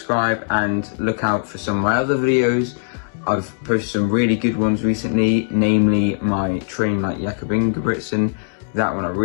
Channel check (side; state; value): right; silent; digital silence